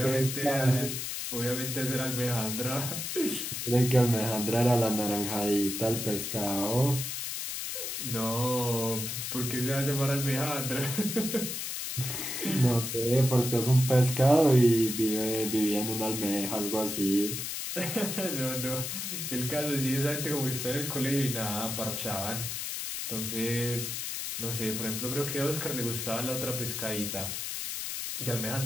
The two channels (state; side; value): noise; left; hiss, 4 dB below the sound